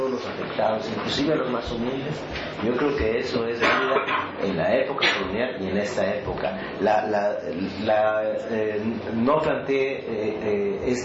los afectados, inclusive a los más humildes, yo creo que eso es válida en la época colonial y en esta época. No planteé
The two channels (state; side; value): identical; both; correlation 1.00